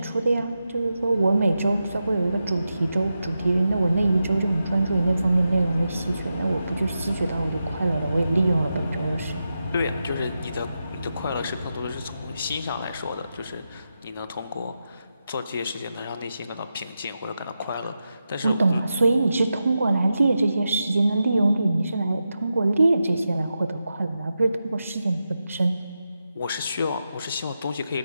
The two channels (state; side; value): inverted; both; correlation -0.89